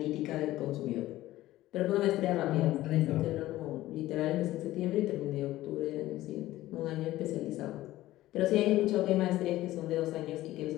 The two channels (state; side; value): quieter; right; 15.8 dB